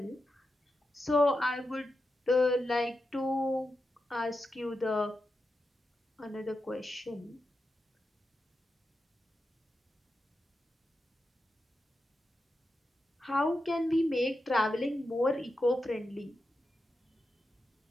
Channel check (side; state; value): both; normal; correlation 0.89